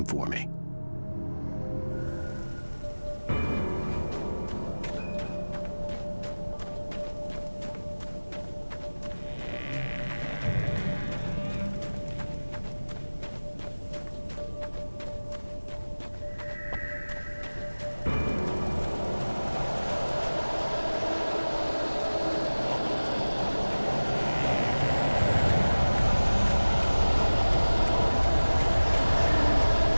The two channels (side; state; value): both; inverted; correlation -1.00